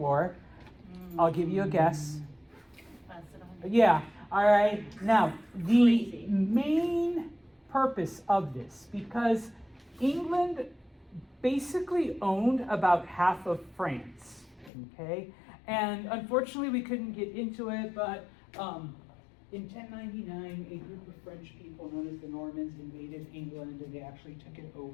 I'll give you a guess. Yeah, all right. Now, the main purpose of this, because England basically owned about half of France, okay? And unfortunately, we couldn't get into it, but in 1099, a group of French people known as the Normans invaded England, and they actually took it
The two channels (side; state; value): right; drops out; at 14.7 s